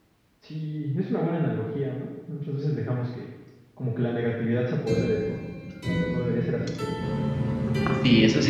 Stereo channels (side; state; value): both; identical; correlation 1.00